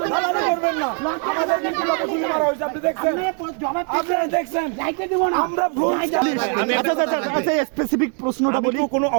স্পেসিফিক প্রশ্নটা বলি, কোনো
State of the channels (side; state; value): left; quieter; 38.9 dB